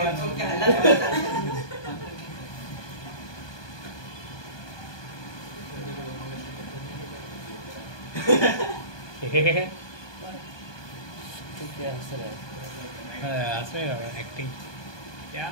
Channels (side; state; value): right; late; 1.2 ms